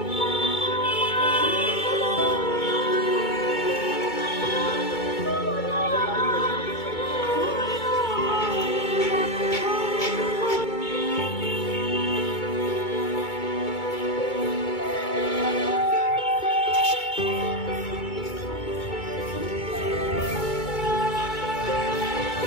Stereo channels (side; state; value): right; late; 2.2 ms